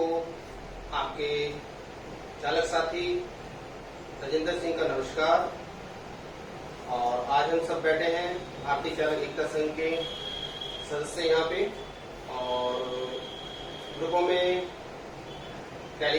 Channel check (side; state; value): both; identical; correlation 1.00